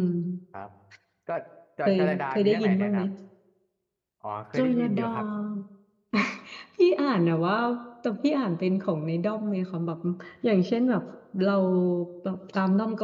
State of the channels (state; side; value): identical; both; correlation 1.00